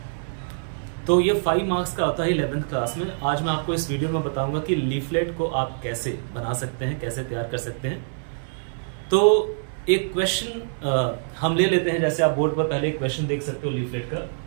तो ये 5 मार्क्स का होता है 11th क्लास में। आज मैं आपको इस वीडियो में बताऊंगा कि लीफलेट को आप कैसे बना सकते हैं, कैसे तैयार कर सकते हैं। तो एक क्वेश्चन हम ले लेते हैं। जैसे आप बोर्ड पर पहले एक क्वेश्चन देख सकते हो लीफलेट का,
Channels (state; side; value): silent; left; 62 dB below the other